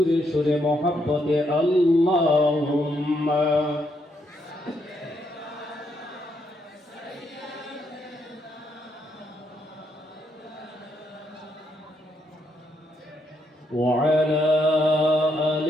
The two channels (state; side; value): normal; both; correlation 0.77